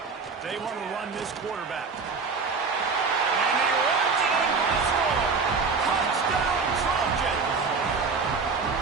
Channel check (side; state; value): left; quieter; 4.8 dB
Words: They want to run this quarterback.